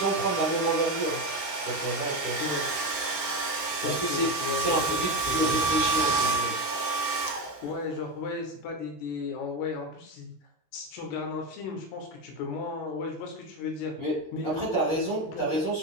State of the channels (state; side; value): late; right; 13 ms